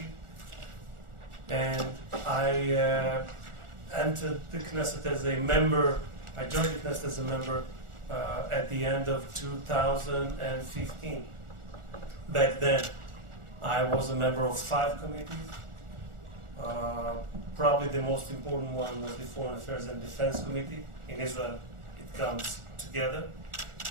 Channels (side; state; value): left; late; 1.4 ms